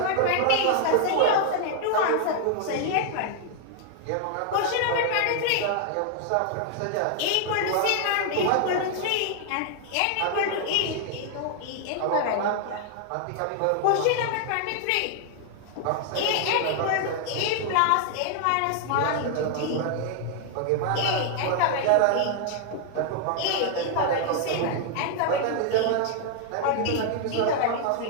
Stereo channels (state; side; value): different; both; correlation 0.00